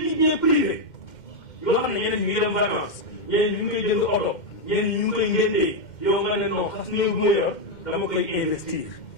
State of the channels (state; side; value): late; right; 2.1 ms